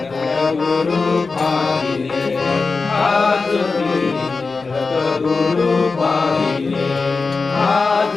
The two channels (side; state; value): right; quieter; 4.2 dB